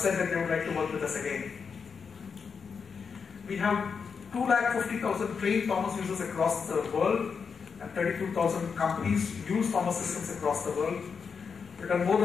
that they would like to work with us again. We have 250,000 trained Thomas users across the world, and 32,000 companies use Thomas systems across the world. We've done more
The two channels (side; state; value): right; quieter; 5.8 dB